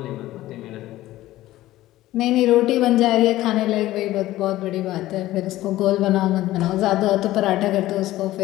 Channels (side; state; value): right; quieter; 15.7 dB